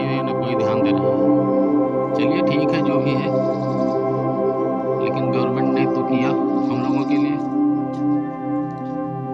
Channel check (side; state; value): both; identical; correlation 1.00